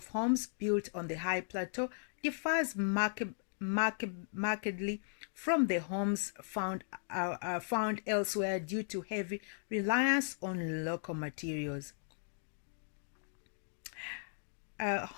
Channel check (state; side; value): silent; right; digital silence